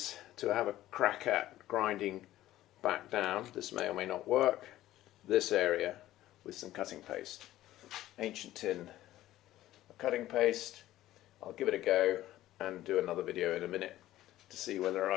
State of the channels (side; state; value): right; quieter; 14.6 dB